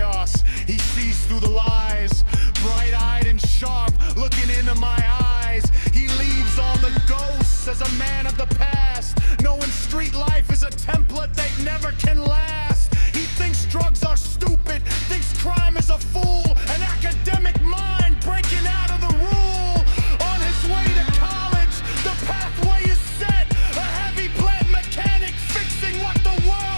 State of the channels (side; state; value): both; inverted; correlation -1.00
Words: he sees through the lies. Bright-eyed and sharp, looking into my eyes. He leaves all the ghosts as a man of the past, knowing street life is a template that never can last. He thinks drugs are stupid, thinks crime is a fool, an academic mind breaking out of the rule. On his way to college, the pathway is set, a heavy plant mechanic fixing what the